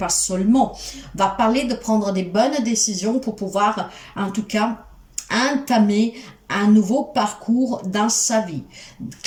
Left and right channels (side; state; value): both; identical; correlation 1.00